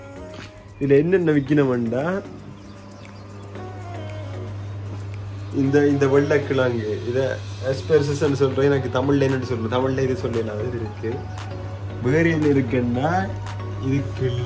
இதில் என்னென்ன விற்கணும்டா இந்த வெள்ளைக்கிழங்கு இதை எஸ்பெர்சஸ்ன்னு சொல்கிறேன். எனக்கு தமிழில் என்னென்னு சொல்கிறேன், தமிழில் இது சொல்லலாம். இது இருக்குது. வேறு என்ன இருக்குன்னா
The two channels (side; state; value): both; identical; correlation 1.00